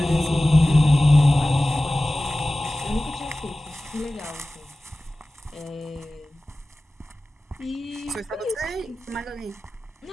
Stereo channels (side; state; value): both; normal; correlation 0.96